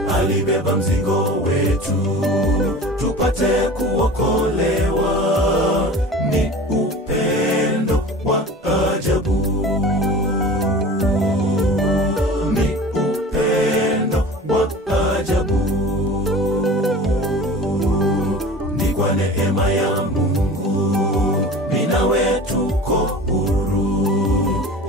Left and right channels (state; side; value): normal; both; correlation 0.38